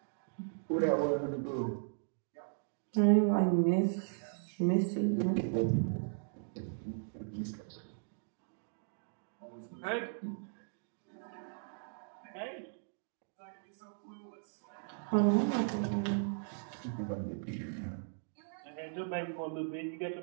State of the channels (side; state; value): left; silent; digital silence